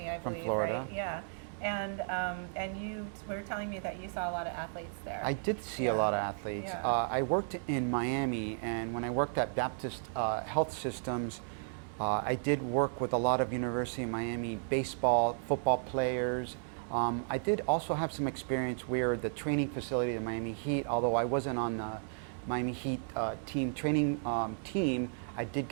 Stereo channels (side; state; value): left; silent; digital silence